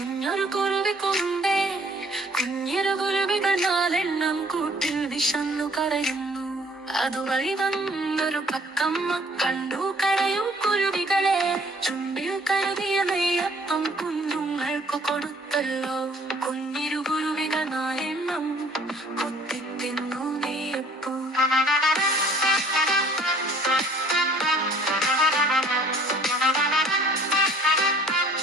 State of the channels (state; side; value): normal; both; correlation 0.57